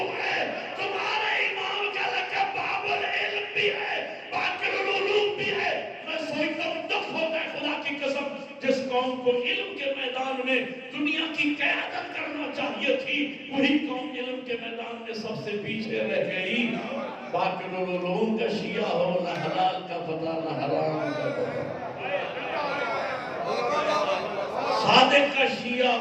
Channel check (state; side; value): identical; both; correlation 1.00